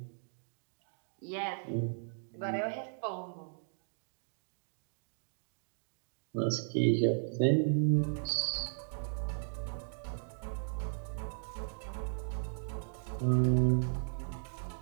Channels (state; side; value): silent; left; digital silence